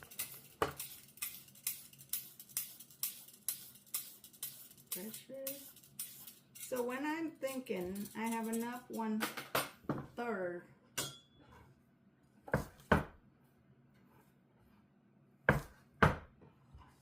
Pressure. So when I'm thinking I have enough 1/3,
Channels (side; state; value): both; identical; correlation 1.00